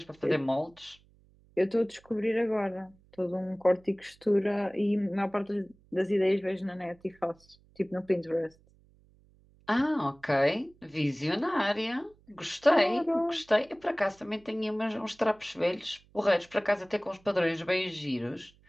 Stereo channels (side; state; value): right; noise; hum, 30 dB below the sound